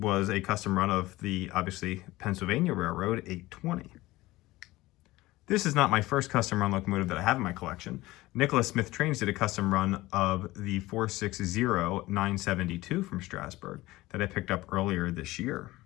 a custom run of the, obviously, Pennsylvania Railroad 820. This is not my first custom run locomotive that I have in my collection. Nicholas Smith Trains did a custom run of the 460-972 from Strasburg that I picked up earlier this year.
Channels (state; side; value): quieter; right; 18.7 dB